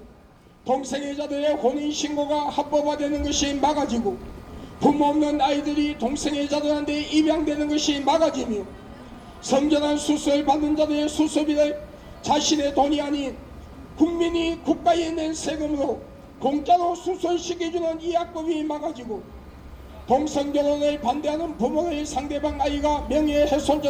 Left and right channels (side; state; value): both; identical; correlation 1.00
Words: 동성애자들의 혼인신고가 합법화되는 것이 막아지고 부모 없는 아이들이 동성애자들한테 입양되는 것이 막아지며 성전환 수술 받는 자들의 수술비를 자신의 돈이 아닌 국민이 국가에 낸 세금으로 공짜로 수술시켜주는 이 악법이 막아지고 동성결혼을 반대하는 부모를 상대방 아이가